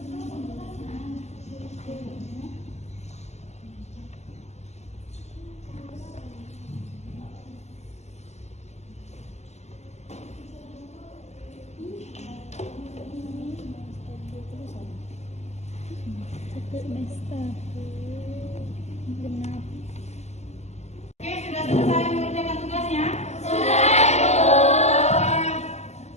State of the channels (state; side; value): late; right; 0.32 ms